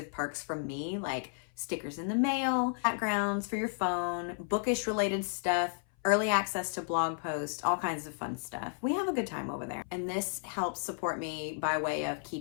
perks from me, like stickers in the mail, backgrounds for your phone, bookish related stuff, early access to blog posts, all kinds of fun stuff. We have a good time over there. And this helps support me by way of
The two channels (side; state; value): right; silent; 56 dB below the other